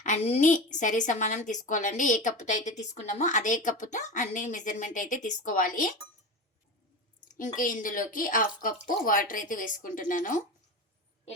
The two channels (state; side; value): normal; both; correlation 0.25